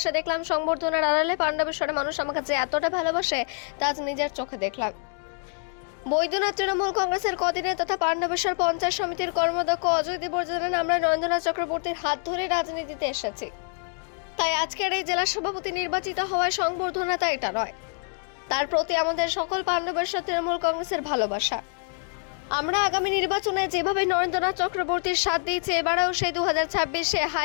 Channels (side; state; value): right; silent; 56 dB below the other